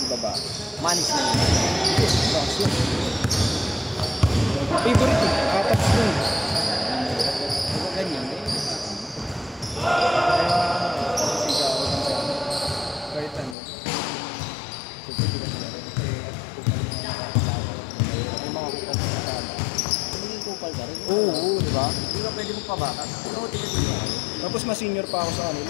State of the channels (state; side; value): drops out; right; at 13.6 s